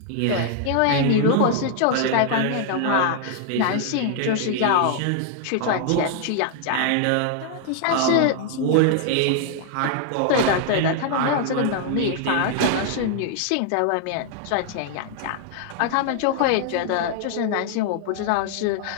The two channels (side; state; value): both; different; correlation 0.00